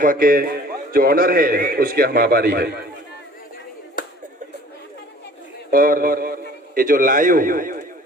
के जो ऑनर है उसके हम आभारी है। और ये जो लाइव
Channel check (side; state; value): both; normal; correlation 0.50